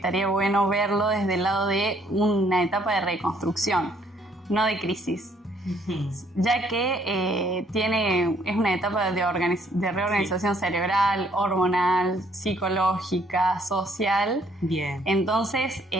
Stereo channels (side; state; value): both; normal; correlation 0.65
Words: bueno verlo desde el lado de una etapa de reconstrucción, no de crisis, ya que es una etapa de reorganización cerebral, hormonal, psicológica, social. Bien. Entonces,